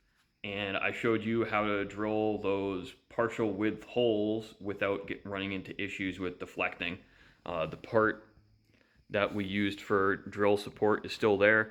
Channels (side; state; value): both; identical; correlation 1.00